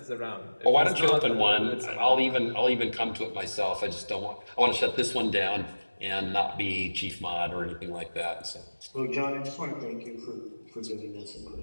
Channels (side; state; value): both; inverted; correlation -1.00